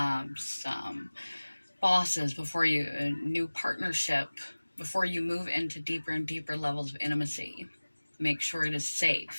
bosses, a new partnership, before you move into deeper and deeper levels of intimacy, make sure it is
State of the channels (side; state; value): both; inverted; correlation -1.00